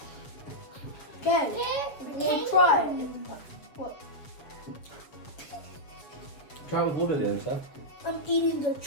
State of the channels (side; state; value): right; late; 7.3 ms